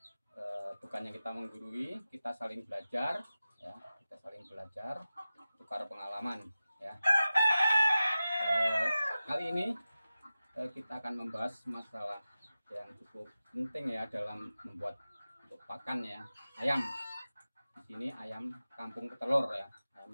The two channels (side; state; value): both; inverted; correlation -0.95